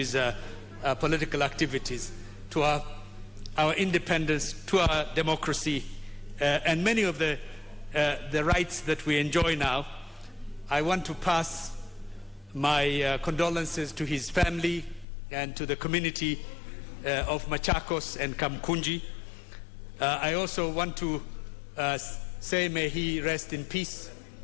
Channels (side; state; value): right; drops out; at 15.1 s